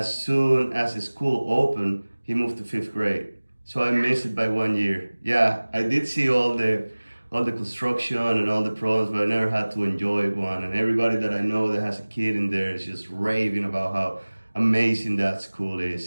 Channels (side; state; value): both; inverted; correlation -1.00